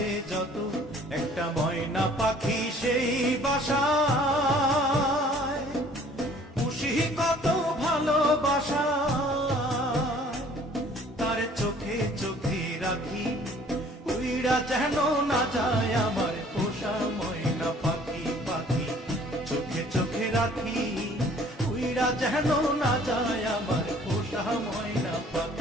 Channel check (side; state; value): both; normal; correlation 0.55